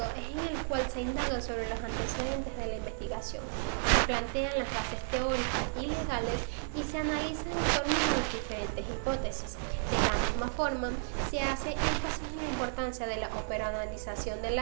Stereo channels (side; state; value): left; silent; digital silence